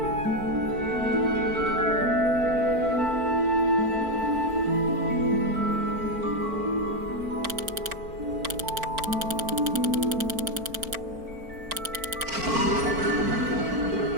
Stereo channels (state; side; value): late; left; 4.5 ms